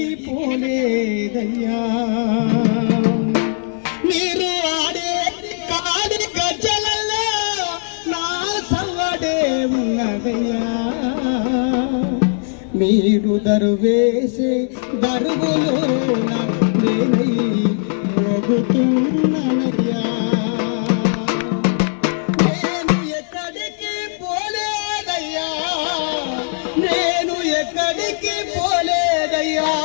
పోలేదయ్యా మీరు ఆడే కాడి గజ్జలల్లో నా సవ్వడే ఉన్నదయ్యా మీరు దరువేసే దరుగులో నేనై మోగుతున్నానయ్యా నేను ఎక్కడికి పోలేదయ్యా నేను ఎక్కడికి పోలేదయ్యా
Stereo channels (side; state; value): right; silent; digital silence